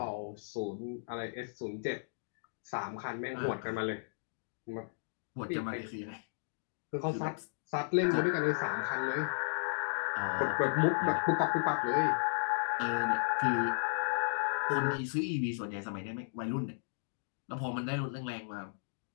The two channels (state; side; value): silent; right; digital silence